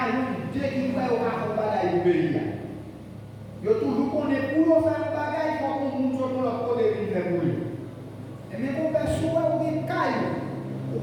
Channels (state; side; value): identical; both; correlation 1.00